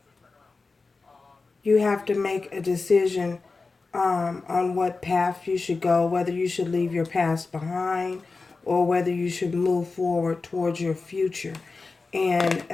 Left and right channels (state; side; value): quieter; right; 4.0 dB